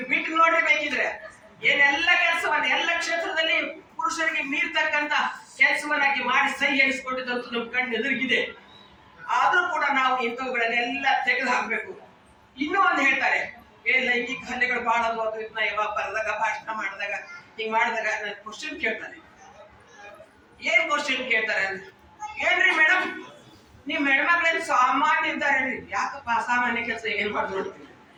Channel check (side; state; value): both; identical; correlation 1.00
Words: ಬಿಟ್ಟು ನೋಡ್ರಿ ಬೇಕಿದ್ರೆ. ಏನೆಲ್ಲ ಕೆಲಸವನ್ನ ಎಲ್ಲ ಕ್ಷೇತ್ರದಲ್ಲಿ ಪುರುಷರಿಗೆ ಮೀರ್ತಕ್ಕಂತ ಕೆಲಸವನ್ನಾಗಿ ಮಾಡಿ ಸೈ ಎನಿಸ್ಕೊಂಡಿದ್ದಂತೂ ನಮ್ ಕಣ್ಣು ಎದುರಿಗಿದೆ. ಆದ್ರೂ ಕೂಡ ನಾವು ಇಂಥವುಗಳನ್ನೆಲ್ಲ ತೆಗೆದು ಹಾಕ್ಬೇಕು. ಇನ್ನೂ ಒಂದು ಹೇಳ್ತಾರೆ, ಲೈಂಗಿಕ ಹಲ್ಲೆಗಳು ಬಹಳ ಯಾವಾಗ ಬರೆದಾಗ, ಭಾಷಣ ಮಾಡಿದಾಗ, ಹಿಂಗ್ ಮಾಡಿದಾಗ ಕ್ವಶನ್ ಕೇಳ್ತಾರೆ. ಏನ್ ಕ್ವಶನ್ ಕೇಳ್ತಾರೆ ಅಂದ್ರೆ, ಏನ್ರಿ ಮೇಡಮ್ ನೀವ್ ಹೆಣ್ಮಕ್ಳೇನ್ ಸಾಮಾನ್ಯ ಇದ್ದಾರೆ? ಯಾಕಪ್ಪ ಅಸಾಮಾನ್ಯ ಕೆಲಸ ಏನ್ ಮಾಡಿ ನೋಡ್ತೀವಿ?